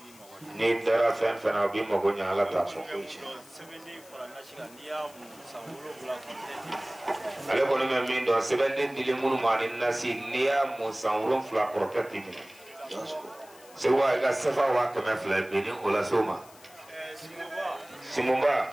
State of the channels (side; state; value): left; noise; hiss, 23 dB below the sound